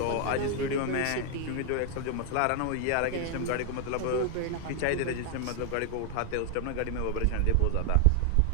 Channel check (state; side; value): different; both; correlation 0.00